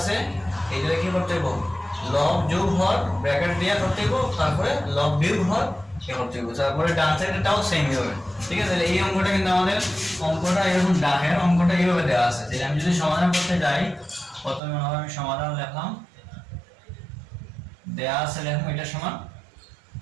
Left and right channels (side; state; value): left; drops out; at 14.6 s